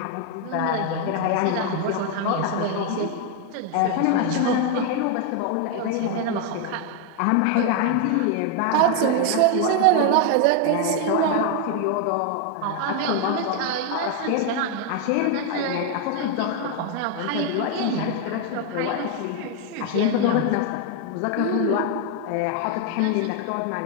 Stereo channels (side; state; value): both; different; correlation 0.01